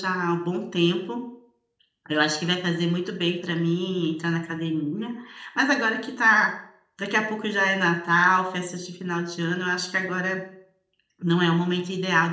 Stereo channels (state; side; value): identical; both; correlation 1.00